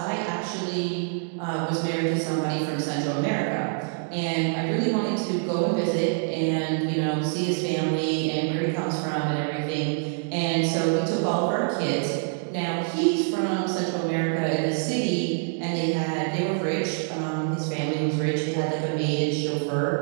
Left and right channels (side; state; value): left; silent; 57 dB below the other